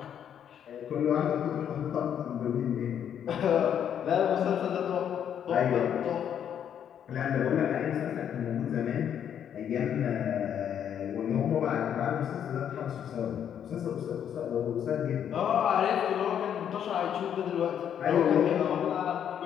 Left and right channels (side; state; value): right; quieter; 9.1 dB